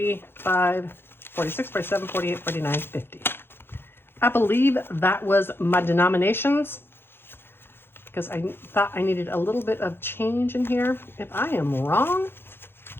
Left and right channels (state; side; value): late; right; 0.11 ms